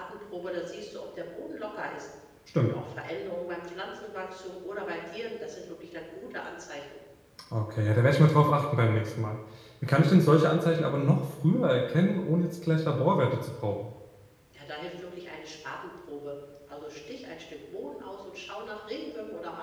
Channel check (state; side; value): identical; both; correlation 1.00